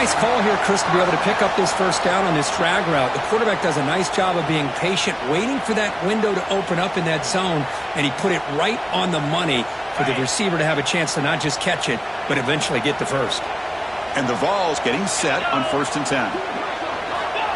call here, Chris, to be able to pick up this first down on this drag route. The quarterback does a nice job of being patient, waiting for that window to open up in that zone, and he put it right on the money for the receiver to have a chance to not just catch it, but eventually get the first. And the Vols getting set on 1st and 10.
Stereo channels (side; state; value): both; identical; correlation 1.00